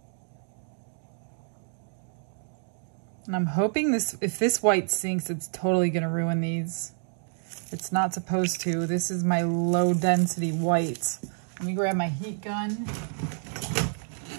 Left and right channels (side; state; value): left; silent; 59 dB below the other